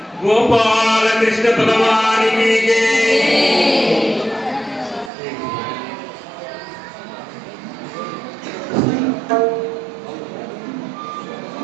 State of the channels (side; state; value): left; drops out; at 5.1 s